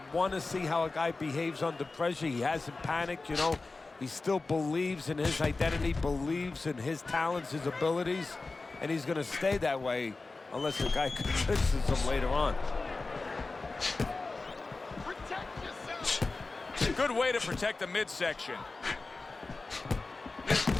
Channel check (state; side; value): quieter; right; 3.6 dB